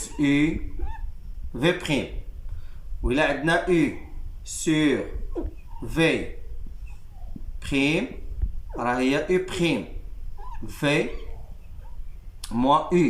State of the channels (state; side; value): identical; both; correlation 1.00